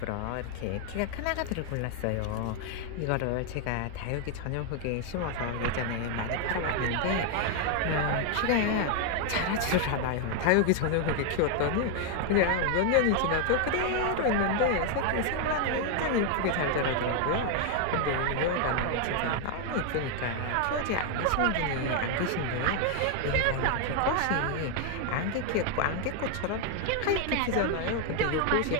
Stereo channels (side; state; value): both; different; correlation 0.00